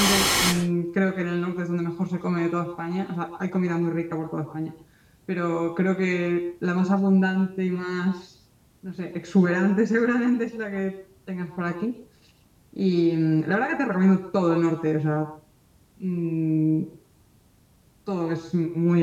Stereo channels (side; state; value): both; identical; correlation 1.00